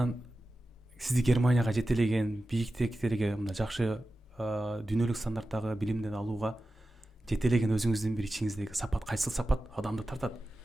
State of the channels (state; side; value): normal; both; correlation 0.94